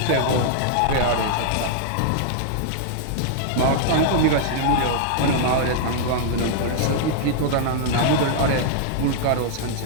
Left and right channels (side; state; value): both; different; correlation -0.01